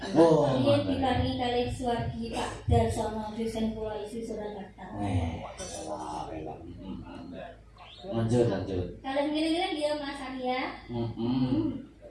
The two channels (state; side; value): identical; both; correlation 1.00